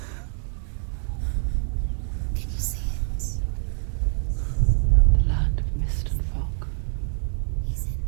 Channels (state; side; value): silent; left; digital silence